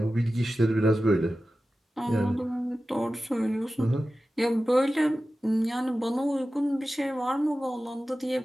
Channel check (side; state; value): both; normal; correlation 0.94